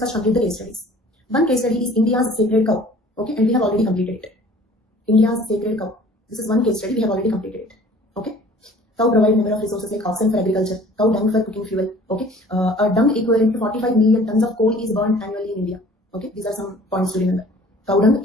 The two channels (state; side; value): normal; both; correlation 0.50